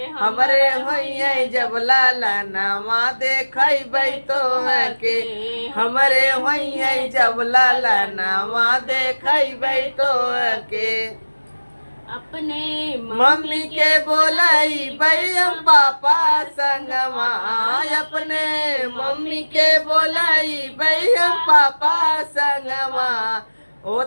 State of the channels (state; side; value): inverted; both; correlation -1.00